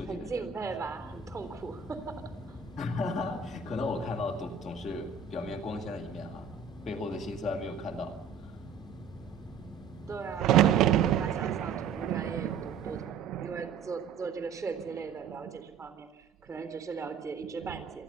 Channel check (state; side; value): quieter; left; 6.0 dB